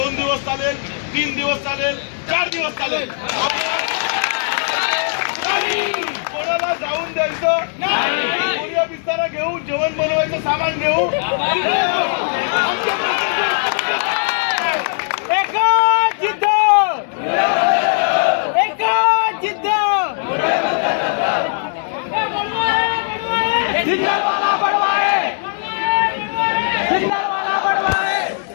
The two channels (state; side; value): silent; right; digital silence